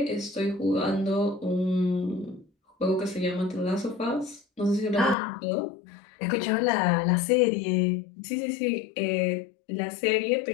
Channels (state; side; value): drops out; right; at 5.2 s